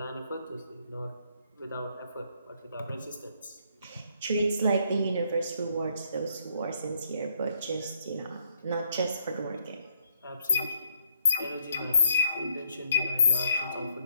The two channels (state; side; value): inverted; both; correlation -0.69